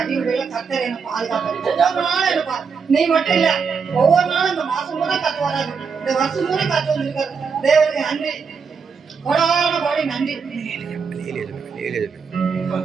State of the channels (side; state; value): left; quieter; 5.7 dB